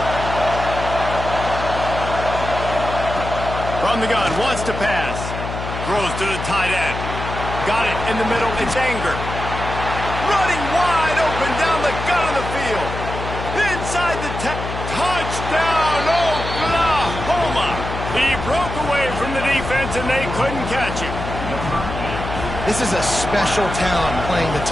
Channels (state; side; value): noise; left; hum, 6 dB below the sound